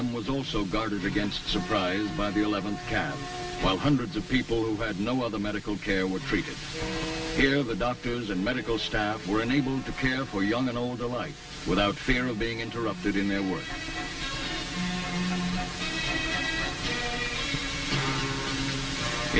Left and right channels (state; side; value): identical; both; correlation 1.00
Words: was also guarded against surprise by the 11th Cav, while hundreds of people who had no other medical care were treated. Here, the doctors and medical staff were enabled to care for young and old alike without fear of being interrupted in their work.